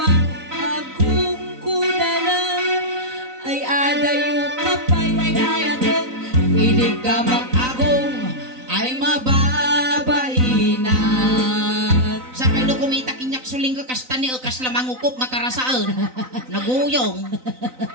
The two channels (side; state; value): left; late; 3.9 ms